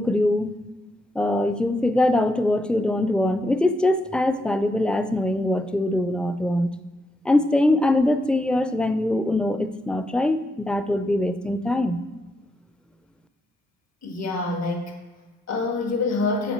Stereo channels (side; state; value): both; normal; correlation 0.80